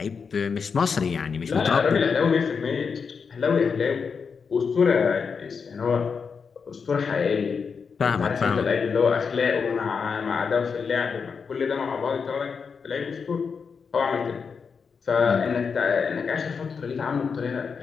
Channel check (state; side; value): quieter; right; 5.7 dB